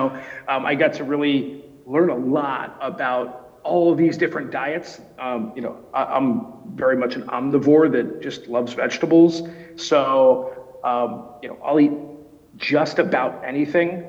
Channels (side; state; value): both; identical; correlation 1.00